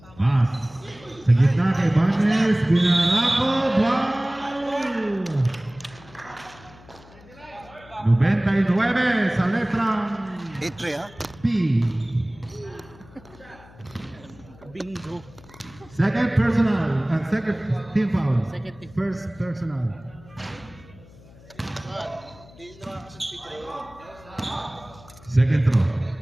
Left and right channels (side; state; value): left; noise; hum, 23 dB below the sound